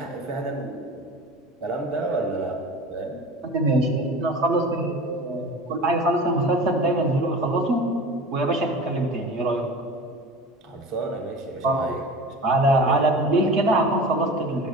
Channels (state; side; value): normal; both; correlation 0.36